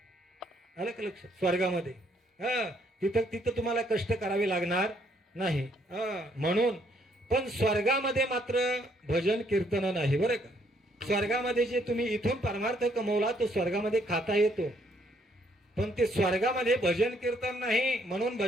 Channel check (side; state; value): both; normal; correlation 0.69